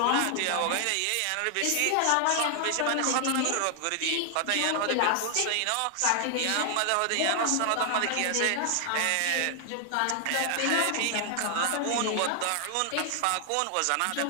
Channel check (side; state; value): both; different; correlation 0.00